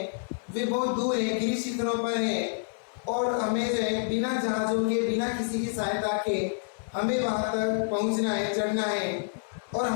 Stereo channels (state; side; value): silent; right; 59 dB below the other